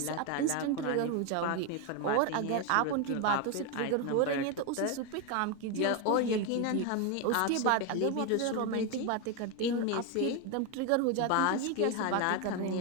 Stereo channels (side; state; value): both; different; correlation 0.02